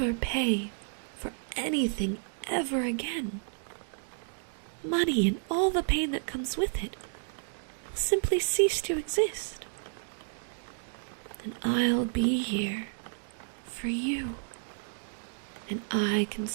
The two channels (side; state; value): left; silent; 57 dB below the other